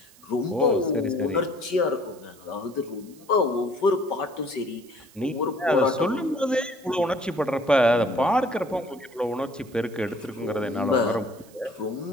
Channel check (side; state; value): right; noise; hiss, 25 dB below the sound